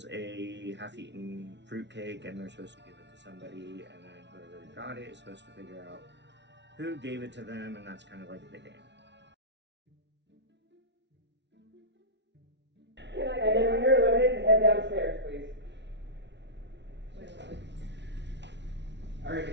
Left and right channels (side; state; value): left; late; 0.51 ms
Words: a half-eaten fruitcake and they're supposed to give it to somebody, and then whoever got it is supposed to figure out who gave it to them, and that's kind of like the game. And then when you're eliminated, head downstairs, please. Alright,